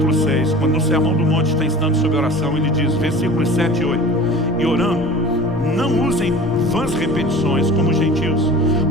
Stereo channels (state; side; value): normal; both; correlation 0.40